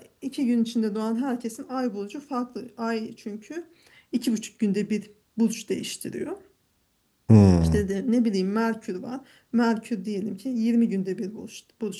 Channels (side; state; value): both; identical; correlation 1.00